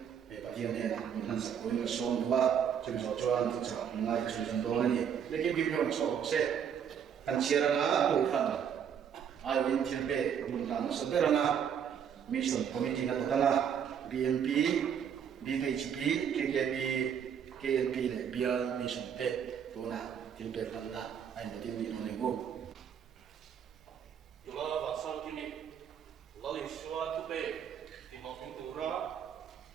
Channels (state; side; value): quieter; left; 8.1 dB